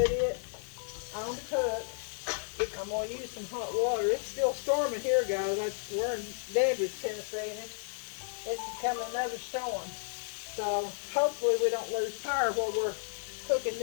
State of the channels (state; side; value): silent; right; digital silence